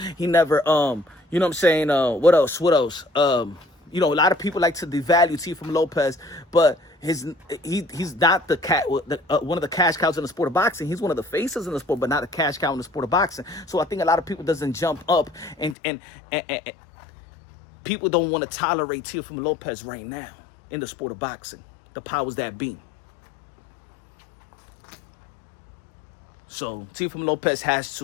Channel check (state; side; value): drops out; right; at 15.8 s